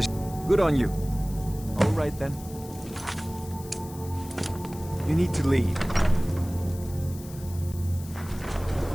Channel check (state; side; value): noise; left; hiss, 18 dB below the sound